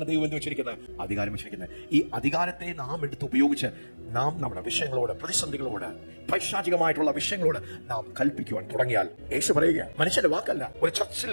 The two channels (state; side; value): inverted; both; correlation -1.00